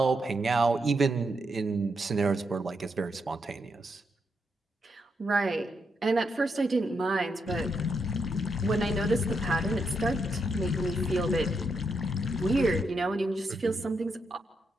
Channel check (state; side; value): normal; both; correlation 0.81